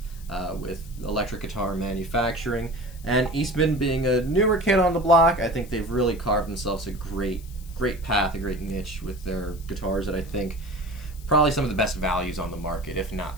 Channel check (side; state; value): left; noise; hiss, 22 dB below the sound